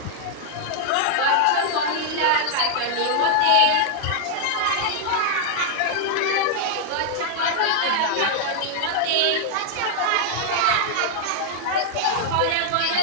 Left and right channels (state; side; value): different; both; correlation -0.01